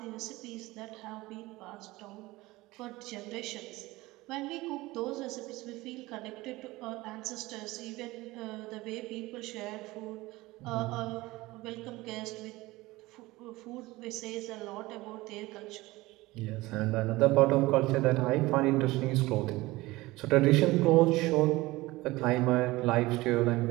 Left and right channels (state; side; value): quieter; left; 19.9 dB